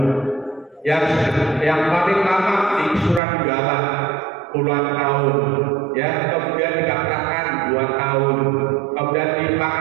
Yang paling lama di Surat Gala puluhan tahun ya, kemudian di Kaptakan 2 tahun, kemudian di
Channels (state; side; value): drops out; left; at 3.2 s